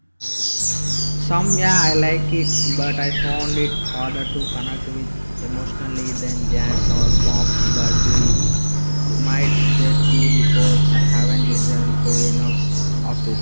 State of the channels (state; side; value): inverted; both; correlation -1.00